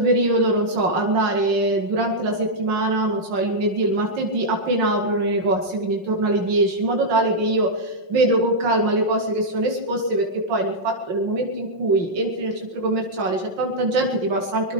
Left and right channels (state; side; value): late; left; 5.5 ms